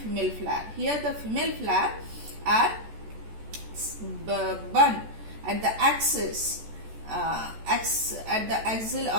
flower. Here the female flower are bun at the axis, at the axil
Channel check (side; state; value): left; late; 14 ms